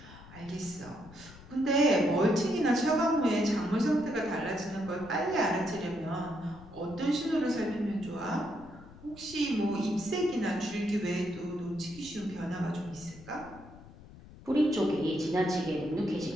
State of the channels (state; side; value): noise; left; rumble, 19 dB below the sound